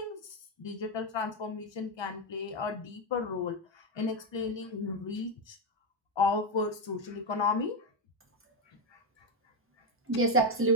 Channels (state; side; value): normal; both; correlation 0.06